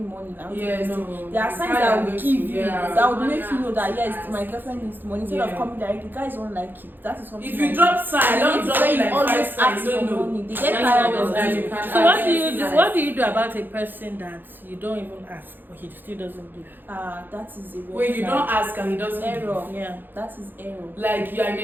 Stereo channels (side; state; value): left; late; 0.092 ms